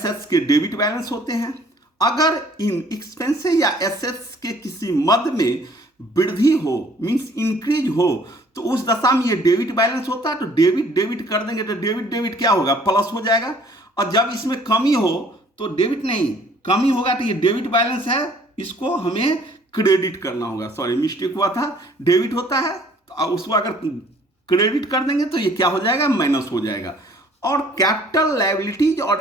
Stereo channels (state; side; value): normal; both; correlation 0.57